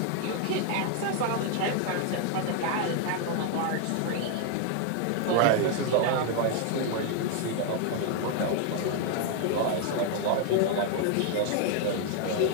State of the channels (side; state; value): both; different; correlation 0.00